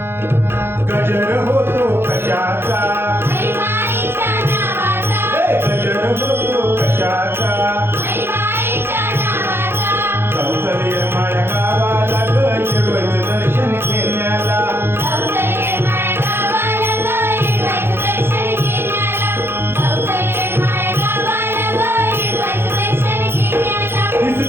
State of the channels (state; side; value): late; left; 0.11 ms